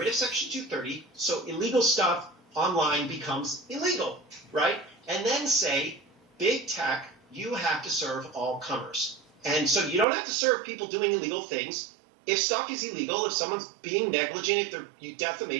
of Section 230, so illegal stuff online becomes illegal, right? And then say, big tech, you have to serve all comers. And so you don't have to serve people doing illegal things. If stuff is illegal, if someone's being negligent, if they're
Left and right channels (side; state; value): left; drops out; at 10.1 s